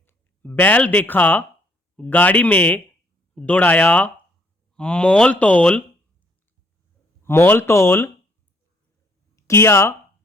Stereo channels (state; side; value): normal; both; correlation 0.66